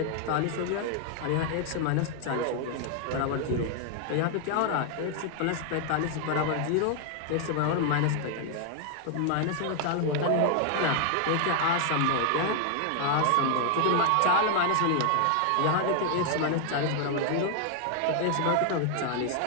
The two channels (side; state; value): both; different; correlation 0.00